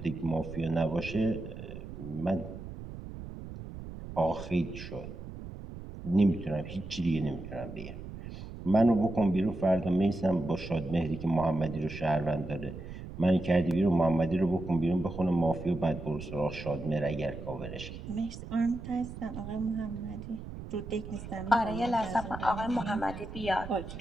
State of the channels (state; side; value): noise; right; rumble, 11 dB below the sound